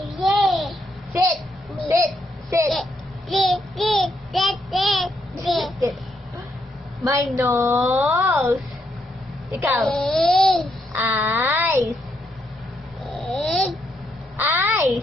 Sit! Sit! Sit! Sit! My nose! Ikaw. Eyes!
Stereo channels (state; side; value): normal; both; correlation 0.78